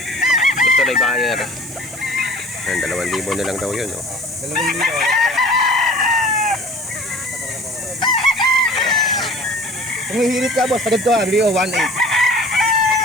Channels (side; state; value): right; noise; hiss, 19 dB below the sound